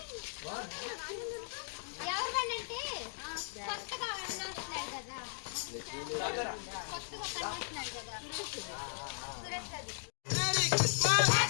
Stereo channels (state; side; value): silent; right; digital silence